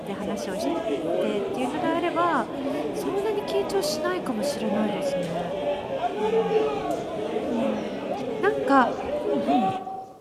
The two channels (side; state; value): both; identical; correlation 1.00